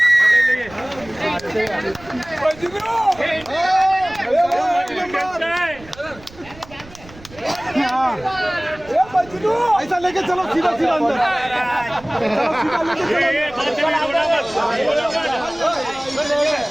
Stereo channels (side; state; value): right; noise; rumble, 21 dB below the sound